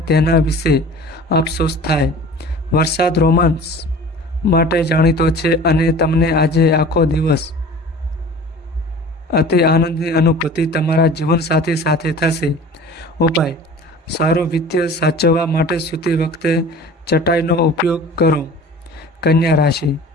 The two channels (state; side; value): normal; both; correlation 0.42